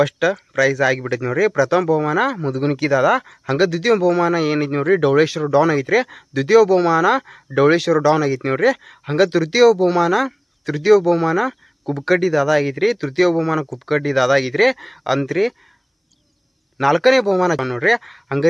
ಪ್ರೈಸ್ ಆಗಿಬಿಟ್ಟೈತಿ ನೋಡ್ರಿ. ಪ್ರಥಮ ಬಹುಮಾನ ಮುದುಗುನಿಕಿ ದಾದಾ. ಹಂಗ ದ್ವಿತೀಯ ಬಹುಮಾನ ಏನೈತಿ ನೋಡ್ರಿ ಡೌಳೇಶ್ವರ ಡೌನ್ ಐತ್ರಿ. ದ್ವಿತೀಯ ಬಹುಮಾನ ಡೌಳೇಶ್ವರ ಡೌನ್ ಆಗೈತಿ ನೋಡ್ರಿ. ಹಂಗ ತೃತೀಯ ಬಹುಮಾನ ಕುಬ್ಕಡ್ಡಿ ದಾದಾ ಆಗೈತ್ರಿ. ತೃತೀಯ ಬಹುಮಾನ ಕುಬ್ಕಡ್ಡಿ ದಾದಾ ಆಗೈತ್ರಿ ಅಂತ್ರಿ. 4ನೇ ಬಹುಮಾನ ನೋಡ್ರಿ.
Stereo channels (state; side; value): identical; both; correlation 1.00